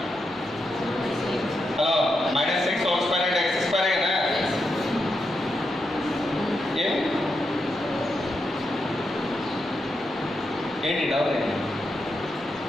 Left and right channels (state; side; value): normal; both; correlation 0.84